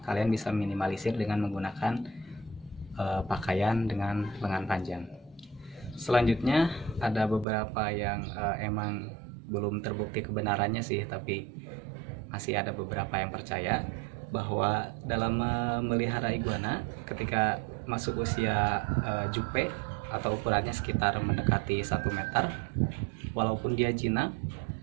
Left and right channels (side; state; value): left; drops out; at 7.5 s